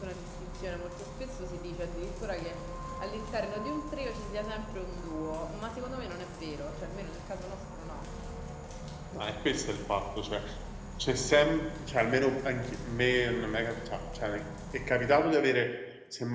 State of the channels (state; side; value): identical; both; correlation 1.00